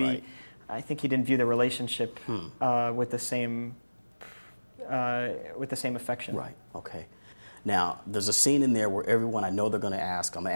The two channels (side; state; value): both; inverted; correlation -1.00